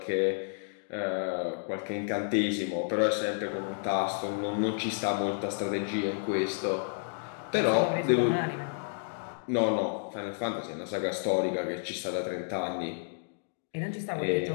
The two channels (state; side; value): silent; right; digital silence